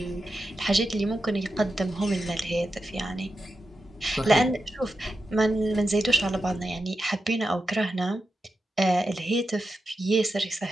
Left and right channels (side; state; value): both; normal; correlation 0.88